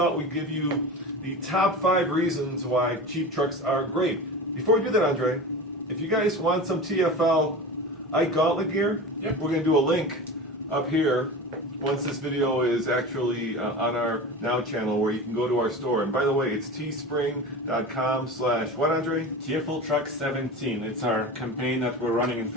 we'd give you the top 5 reasons why cheap trucks are great. Before we do that, Andre, if you guys want some TFL gauntlet gear, we're going to do a link up here once this video is actually on our Now channel, where you can go to our store. And by the way, it's teespring.com/what, Andre? TFL Truck 17. It's our campaign that we're running in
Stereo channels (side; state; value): both; normal; correlation 0.31